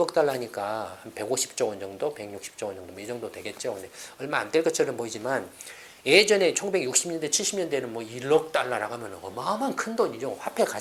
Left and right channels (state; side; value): identical; both; correlation 1.00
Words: 달러니까 한 150조 원 정도, 160조 원 정도, 이 정도 되겠죠. 근데 얼마 안 될 것처럼 보이지만 예전에 1960년대, 70년대는 뭐 1억 달러라고 하면 어마어마한 큰 돈이죠. 화폐